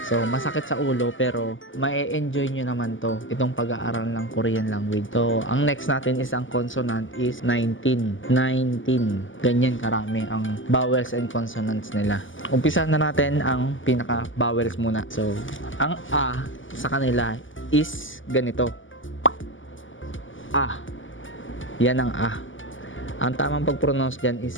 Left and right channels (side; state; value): right; late; 0.57 ms